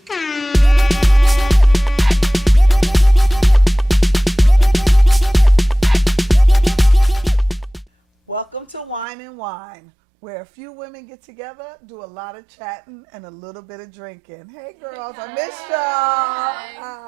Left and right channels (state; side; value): drops out; left; at 9.1 s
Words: Welcome to Wine and Whine, where a few women get together, do a lot of chatting, and a little bit of drinking. Hey girls, I missed